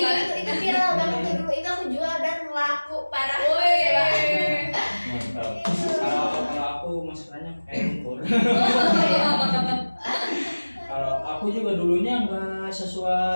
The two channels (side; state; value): both; inverted; correlation -1.00